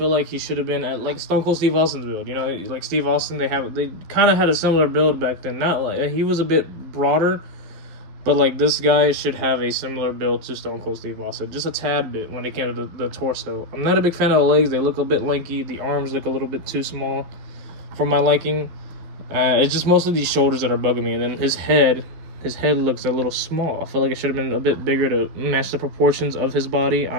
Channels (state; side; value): late; left; 12 ms